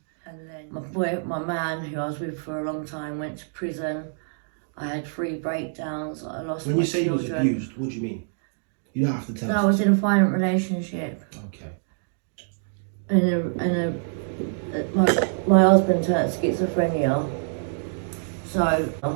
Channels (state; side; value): silent; left; digital silence